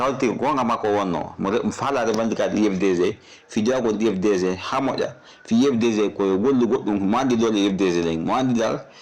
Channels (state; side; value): identical; both; correlation 1.00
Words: hawti gonga makko wonno mo faala revendicat IFDG fi jawgol IFDG ha moƴƴa fi IFDG koye gollu goɗɗum mo andi dole IFDG ɗen mo andi dal